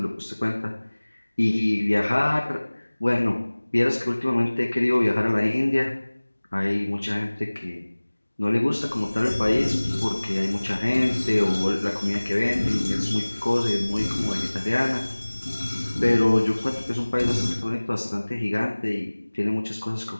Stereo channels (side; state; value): both; inverted; correlation -1.00